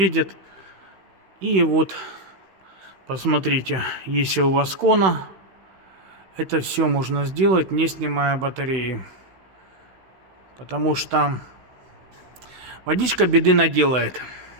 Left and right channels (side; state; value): left; late; 16 ms